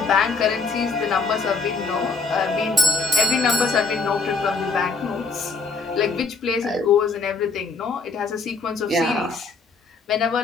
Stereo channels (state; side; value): quieter; right; 4.3 dB